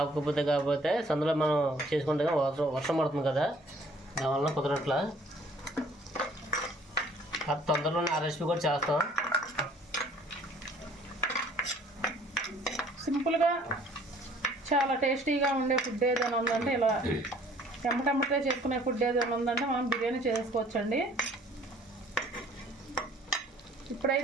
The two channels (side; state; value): both; normal; correlation 0.56